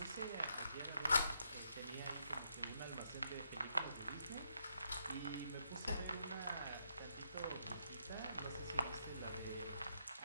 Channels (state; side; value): inverted; both; correlation -0.78